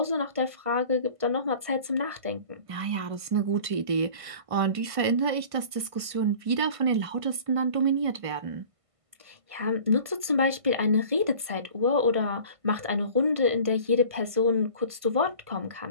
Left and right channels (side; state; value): left; late; 1.5 ms